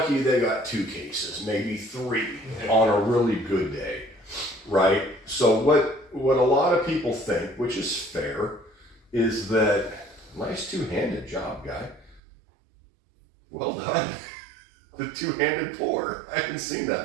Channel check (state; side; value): drops out; left; at 12.2 s